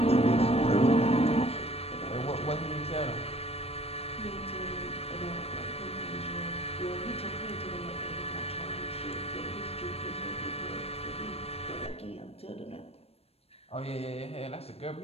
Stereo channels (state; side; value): late; right; 0.29 ms